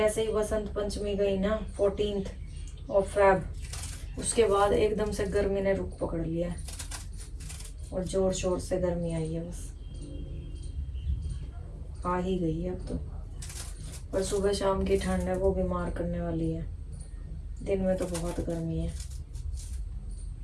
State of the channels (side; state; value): both; identical; correlation 1.00